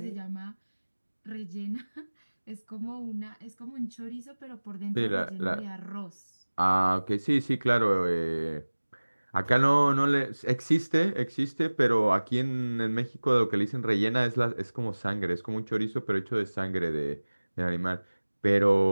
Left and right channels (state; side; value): inverted; both; correlation -1.00